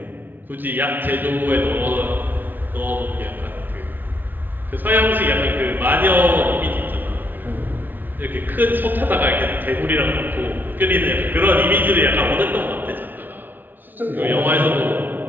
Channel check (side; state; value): left; late; 0.089 ms